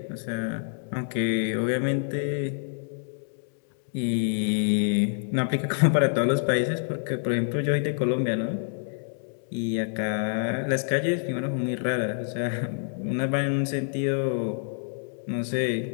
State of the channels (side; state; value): right; silent; 60 dB below the other